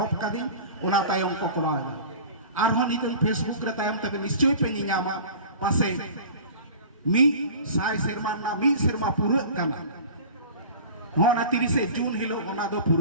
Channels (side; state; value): both; inverted; correlation -0.39